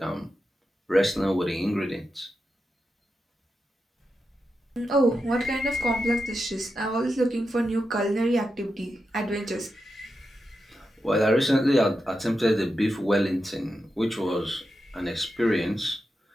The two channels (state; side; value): normal; both; correlation 0.88